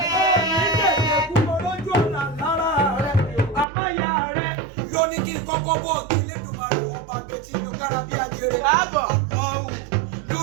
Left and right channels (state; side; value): drops out; left; at 3.7 s